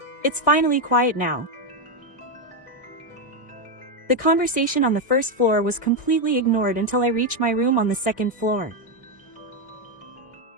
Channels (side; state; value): right; late; 1.6 ms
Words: It's finally quiet now. The conversation on the first floor was completely ignored until I reached my room on the second floor.